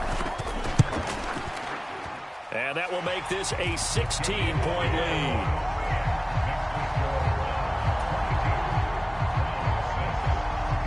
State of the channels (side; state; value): both; identical; correlation 1.00